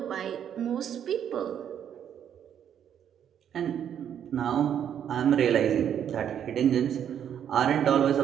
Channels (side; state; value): left; quieter; 9.2 dB